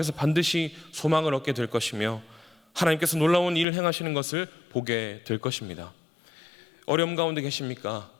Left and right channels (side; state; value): right; drops out; at 3.7 s